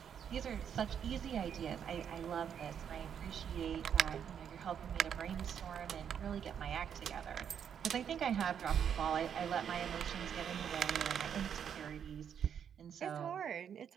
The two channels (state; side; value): quieter; left; 8.2 dB